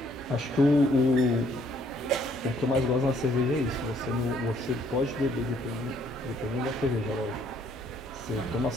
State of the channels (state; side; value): normal; both; correlation 0.66